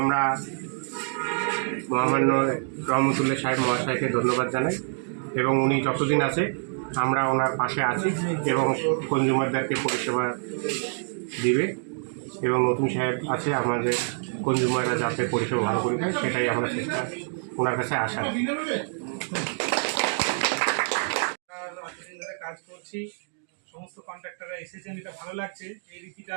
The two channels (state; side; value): silent; left; 61 dB below the other